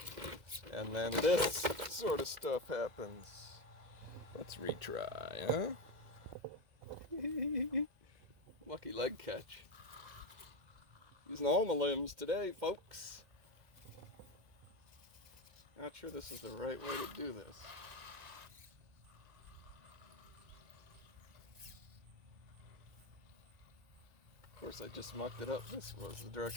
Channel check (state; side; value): late; left; 2.1 ms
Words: And then this sort of stuff happens. Let's retry, huh? Lucky leg catch. Using all my limbs today, folks. Not sure this is the right way to do this. Of course, I just mucked it up. This was the